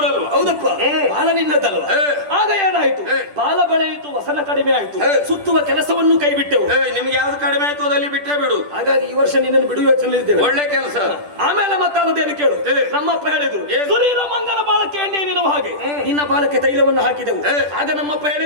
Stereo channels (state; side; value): late; left; 10 ms